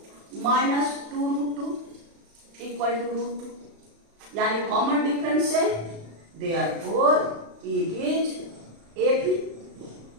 -2√2 = √2, यानी कॉमन डिफरेंस है, देयरफॉर इट इज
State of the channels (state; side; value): late; left; 35 ms